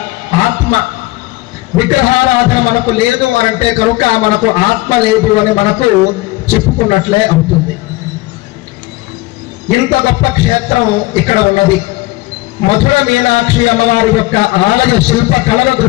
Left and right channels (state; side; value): quieter; right; 20.4 dB